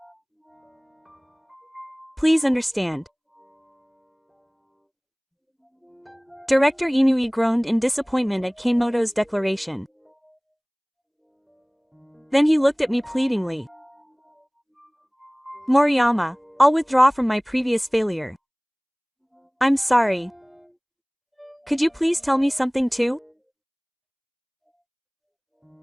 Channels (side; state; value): both; identical; correlation 1.00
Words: Please understand. Director Inui groaned in disappointment at Kanemoto's declaration. Then he looked at me pleadingly. Moriyama, I'll withdraw from my previous failure. I'm sorry. Could you please tell me something too?